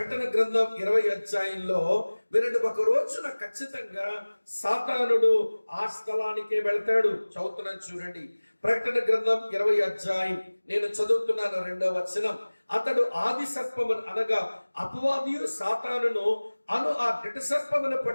గ్రంథం 20 అధ్యాయంలో వినండి, ఒక రోజున ఖచ్చితంగా సాతానుడు ఆ స్థలానికే వెళ్తాడు. చదువుతున్నాను చూడండి, ప్రకటన గ్రంథం 20 అధ్యాయం, నేను చదువుతున్నాను 2వ వచనం. అతడు ఆది సర్పమును అనగా అపవాదియు సాతానును అను ఆ ఘట సర్పమును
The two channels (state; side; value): inverted; both; correlation -1.00